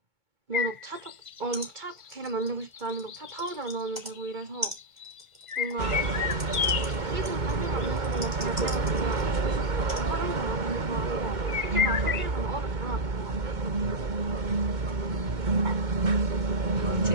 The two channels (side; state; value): left; late; 2.0 ms